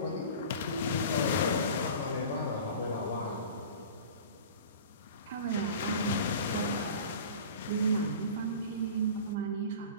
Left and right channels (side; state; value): both; inverted; correlation -0.38